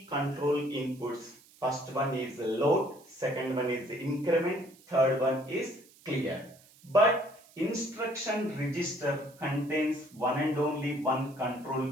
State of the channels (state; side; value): noise; right; hiss, 26 dB below the sound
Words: control inputs. First one is load, second one is increment, third one is clear. But instruction register contains one and only one